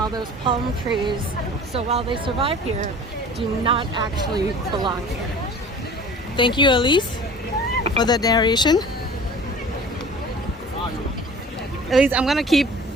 those palm trees. So while they survive here, do not actually belong here. Thank you, Elise, for the narration. Elise, I'm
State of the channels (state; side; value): normal; both; correlation 0.43